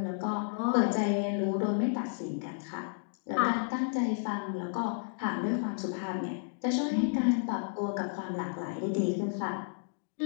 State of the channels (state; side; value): silent; right; digital silence